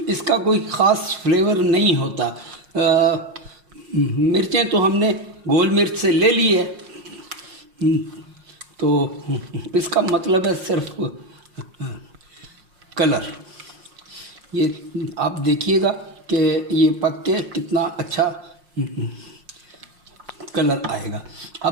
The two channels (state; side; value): late; left; 5.6 ms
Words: इसका कोई ख़ास फ्लेवर नहीं होता। मिर्चें तो हमने गोल मिर्च से ले ली है, तो इसका मतलब है सिर्फ कलर। ये आप देखिएगा कि ये पक के कितना अच्छा कलर आएगा।